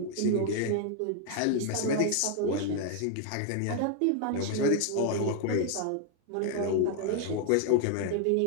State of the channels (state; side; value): different; both; correlation 0.00